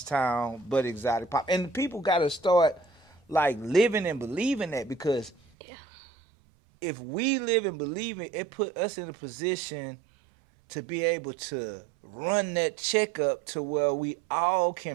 town but exotic pop. And people got to start like living and believing that, because if we live and believe it put us in a position to be able to run that checkup to where we all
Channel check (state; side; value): drops out; left; at 5.4 s